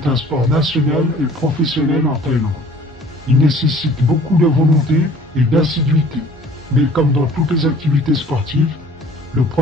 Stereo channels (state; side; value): normal; both; correlation 0.51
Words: un sport national et professionnel en Thaïlande. Il nécessite beaucoup de volonté et d'assiduité. Mais comme dans toutes les activités sportives, le